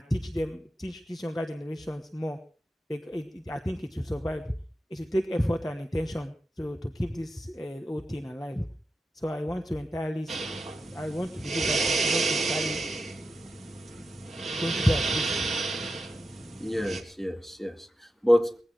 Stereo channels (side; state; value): both; normal; correlation 0.91